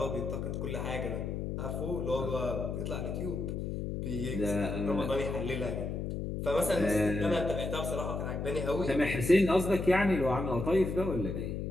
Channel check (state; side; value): noise; left; hum, 3 dB below the sound